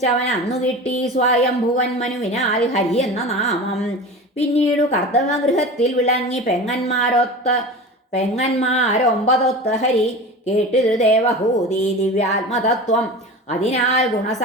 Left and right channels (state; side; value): normal; both; correlation 0.32